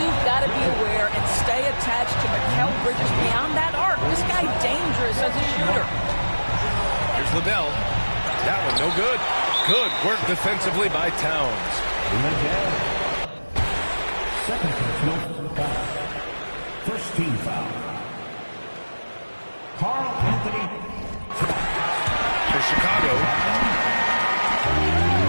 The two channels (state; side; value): inverted; both; correlation -1.00